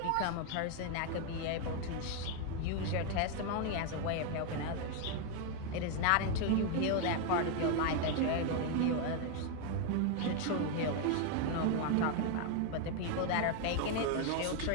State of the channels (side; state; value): both; different; correlation 0.01